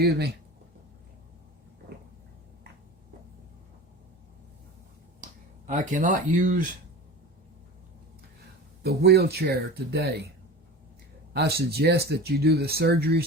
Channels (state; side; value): normal; both; correlation 0.33